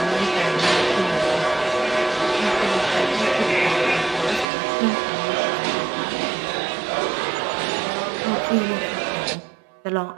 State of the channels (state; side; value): drops out; left; at 4.5 s